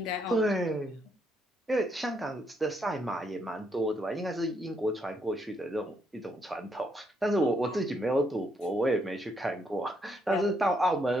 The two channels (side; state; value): both; normal; correlation 0.75